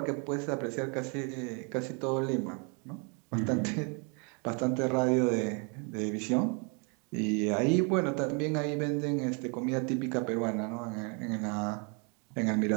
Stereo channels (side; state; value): left; quieter; 35.5 dB